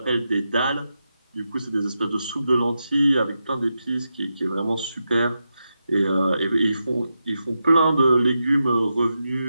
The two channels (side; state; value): both; inverted; correlation -0.88